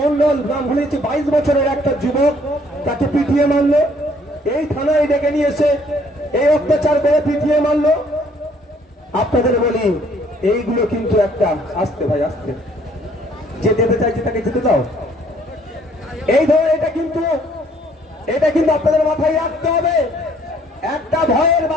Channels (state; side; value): normal; both; correlation 0.62